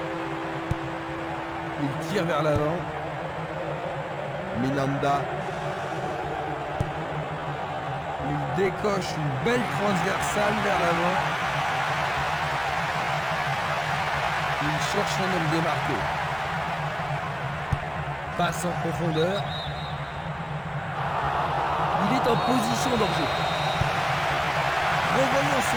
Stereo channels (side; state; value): both; identical; correlation 1.00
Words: Il tire vers l'avant. Minanda. Il décoche une belle transversale vers l'avant. Il cherche un homme démarqué. Passe en profondeur. Il est en position d'enjeu. Revoyons